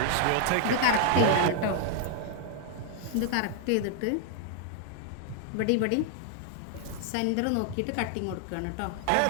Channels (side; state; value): both; different; correlation 0.00